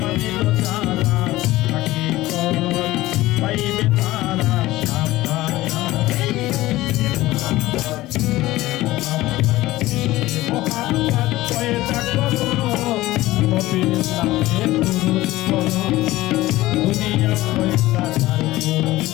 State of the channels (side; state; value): right; quieter; 17.4 dB